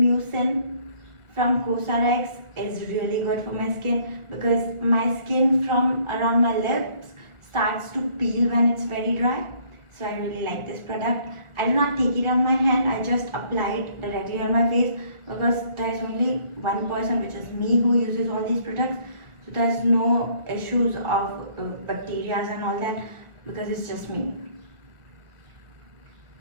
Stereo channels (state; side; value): late; left; 1.5 ms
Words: from Cosrx is really good for my skin, because my skin from around my lips starts to peel when it's very dry. So I really like this product. I do not take it on my hand, I just apply it directly on my face, because there is only one person, which is me, who uses all these products. So there's no issues of bacteria and all that, because it's just me.